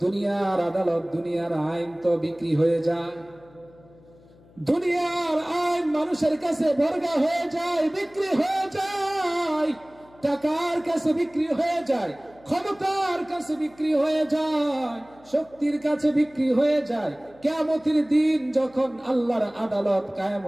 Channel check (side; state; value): left; noise; hum, 27 dB below the sound